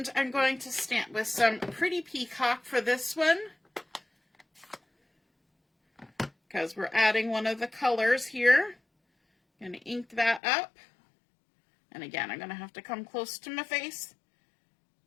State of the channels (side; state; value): right; drops out; at 10.4 s